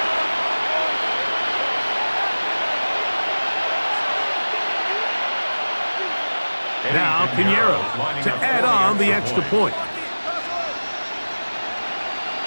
Now Pinheiro to add on the extra point.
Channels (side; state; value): both; inverted; correlation -1.00